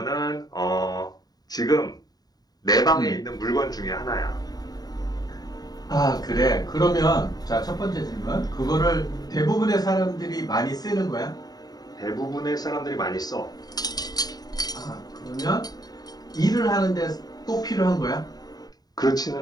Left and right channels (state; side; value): late; right; 0.19 ms